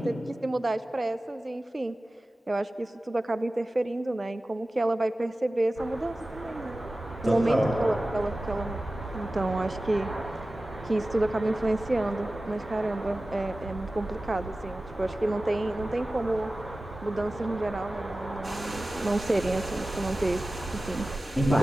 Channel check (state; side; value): normal; both; correlation 0.96